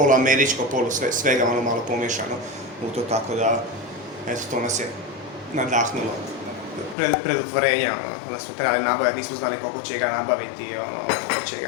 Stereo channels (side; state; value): right; drops out; at 7.0 s